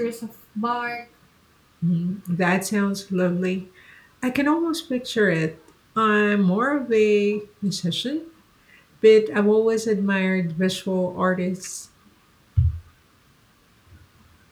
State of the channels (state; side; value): identical; both; correlation 1.00